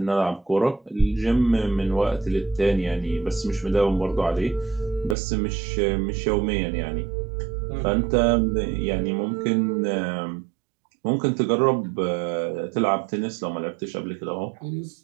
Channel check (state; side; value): drops out; left; at 5.2 s